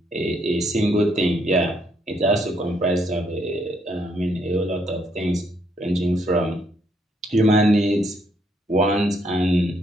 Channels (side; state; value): both; normal; correlation 0.72